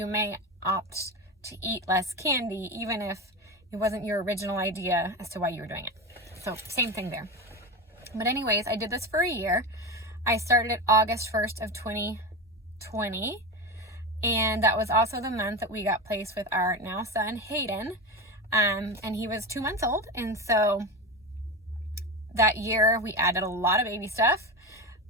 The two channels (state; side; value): normal; both; correlation 0.21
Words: may opt to eat less candy, even if it wasn't your original idea as to why you were doing it. So same thing there. But anyways, I did this for a year. I started at August 1st of 2020, and that was also the month that we got placed with our now son, Hayden, and he was 2 months old, and so that year we added a lot of baby stuff,